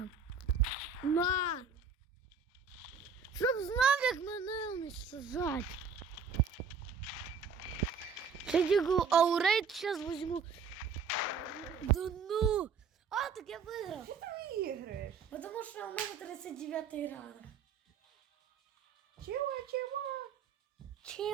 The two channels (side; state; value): left; quieter; 5.6 dB